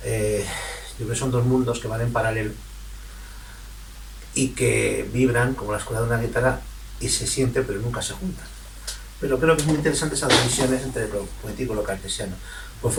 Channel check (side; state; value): both; identical; correlation 1.00